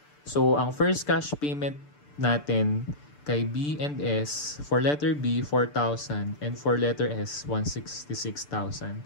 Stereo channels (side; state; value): right; late; 6.8 ms